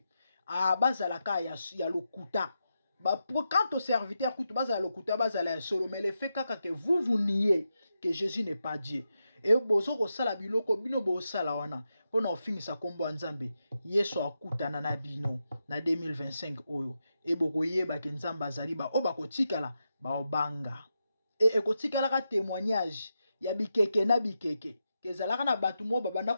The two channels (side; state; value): both; inverted; correlation -0.87